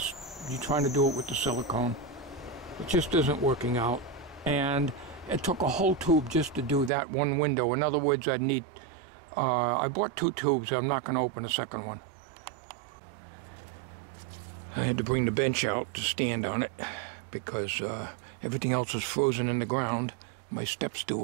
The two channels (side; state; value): left; drops out; at 6.9 s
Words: You're trying to do it with the silicone. It just isn't working out. And it took a whole tube just to do that one window. In other words, I bought 2 tubes. I'm not going to open a second one. I had to bring the bench out to stand on it because everything else is frozen in the ground. My step